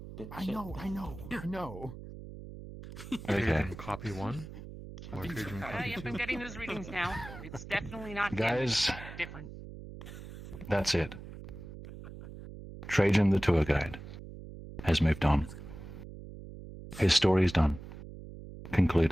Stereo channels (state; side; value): noise; right; hum, 13 dB below the sound